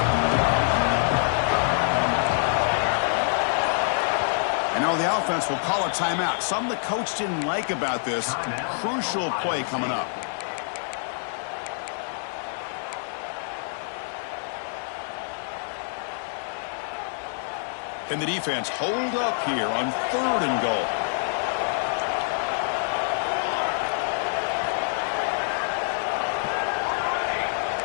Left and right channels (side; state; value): right; silent; digital silence